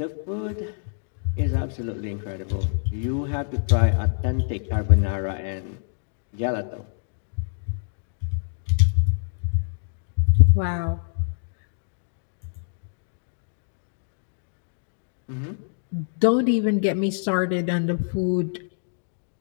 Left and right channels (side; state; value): right; silent; digital silence